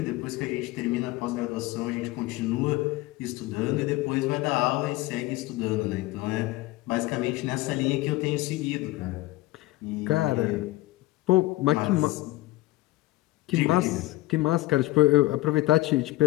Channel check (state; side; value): quieter; right; 18.6 dB